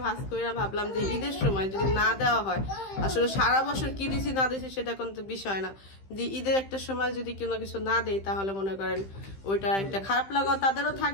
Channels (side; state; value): right; late; 15 ms